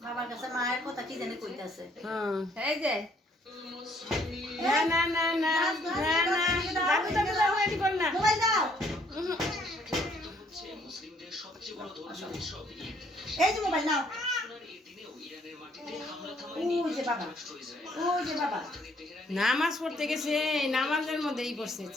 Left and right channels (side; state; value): both; normal; correlation 0.65